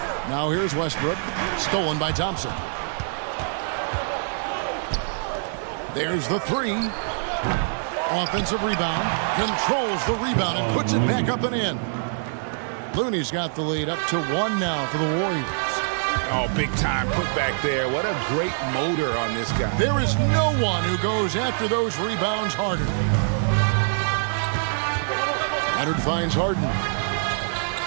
Now here's Westbrook, stolen by Thompson. There's the 3. Offensive rebound, controls the rebound and puts it back up and in. Looney's got the lead up to 1 now for the Warriors. Oh, big time put back there. What a great motor on this guy. There is no one who goes after those rebounds harder. Leonard finds Harden.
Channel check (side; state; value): left; silent; digital silence